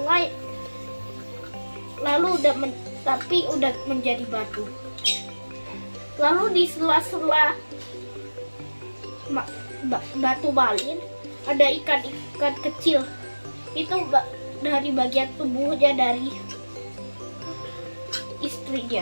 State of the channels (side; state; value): both; inverted; correlation -1.00